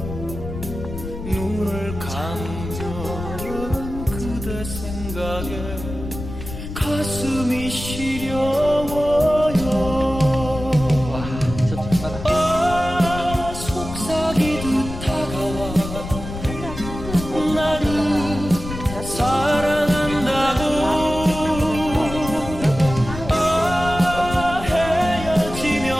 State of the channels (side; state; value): left; noise; rumble, 9 dB below the sound